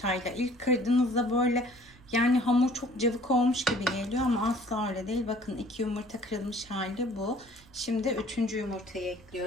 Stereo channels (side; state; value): right; noise; rumble, 25 dB below the sound